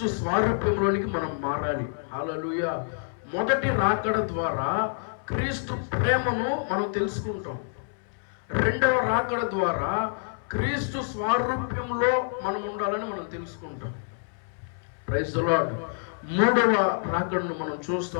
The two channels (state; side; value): silent; right; 60 dB below the other